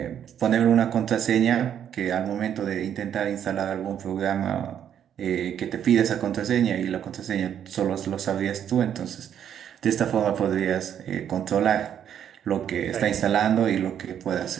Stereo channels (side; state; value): left; quieter; 9.3 dB